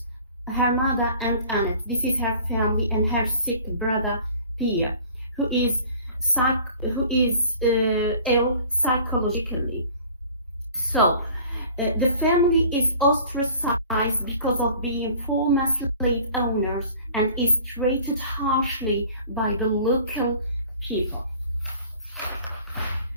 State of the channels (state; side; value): inverted; both; correlation -0.47